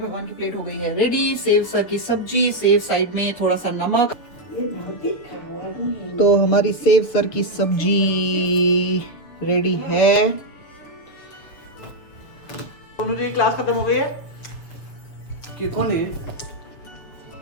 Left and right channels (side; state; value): right; late; 6.8 ms